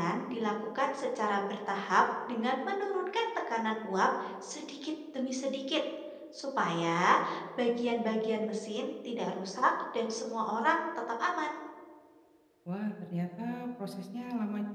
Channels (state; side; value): identical; both; correlation 1.00